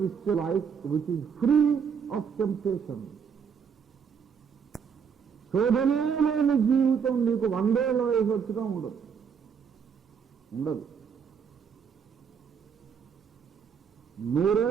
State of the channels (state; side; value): quieter; left; 6.8 dB